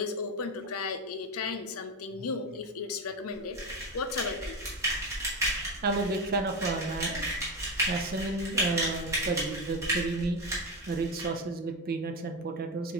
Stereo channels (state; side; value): normal; both; correlation 0.16